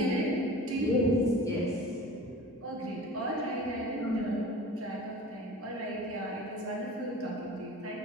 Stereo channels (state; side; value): normal; both; correlation 0.39